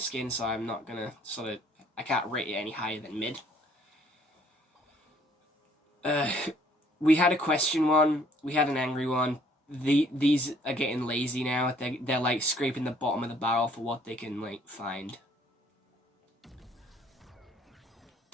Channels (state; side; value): normal; both; correlation 0.61